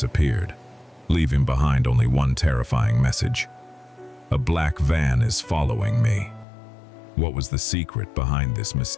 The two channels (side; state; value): right; drops out; at 6.5 s